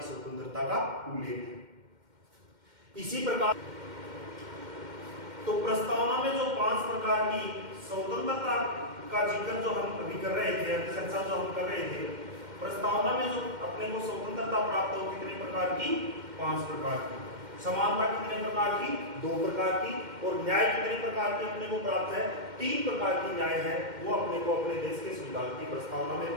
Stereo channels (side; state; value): left; late; 2.1 ms